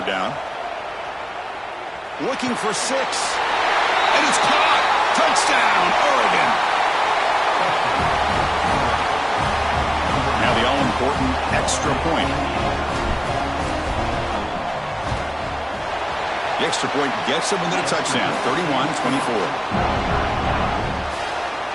down. Looking for 6. And it's caught. Touchdown, Oregon. Now the all-important extra point. The extra point gets them into the touchdown, 31-24.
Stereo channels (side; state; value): both; identical; correlation 1.00